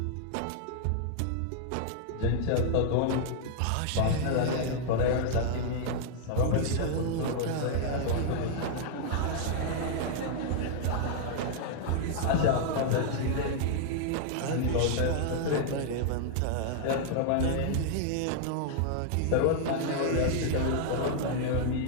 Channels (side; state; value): both; different; correlation -0.01